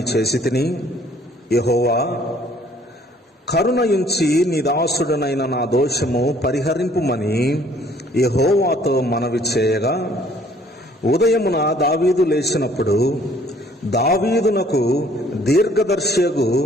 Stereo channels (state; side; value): normal; both; correlation 0.59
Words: చేసి తిని. యెహోవా, కరుణయుంచి నీ దాసుడనైన నా దోషము పరిహరింపుమని యెహోవాతో మనవి చేయగా, ఉదయమున దావీదు లేచినప్పుడు దావీదునకు దీర్ఘదర్శియగు